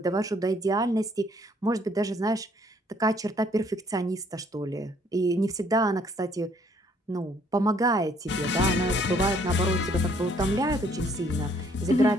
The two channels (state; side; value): normal; both; correlation 0.64